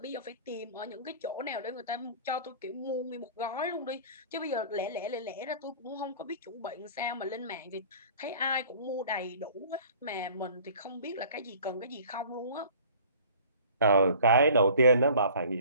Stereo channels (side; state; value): both; inverted; correlation -0.48